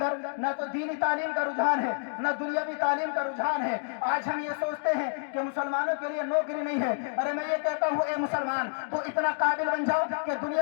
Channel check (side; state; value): right; silent; digital silence